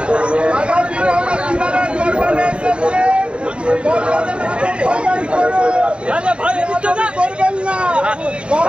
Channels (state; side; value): late; left; 0.056 ms